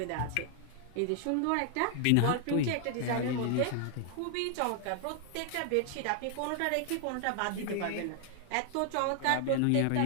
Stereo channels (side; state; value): both; different; correlation 0.00